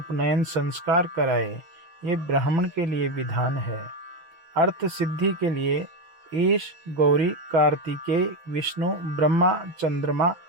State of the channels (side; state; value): left; late; 6.0 ms